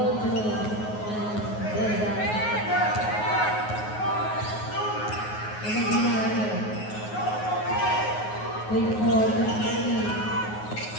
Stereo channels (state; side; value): late; right; 9.4 ms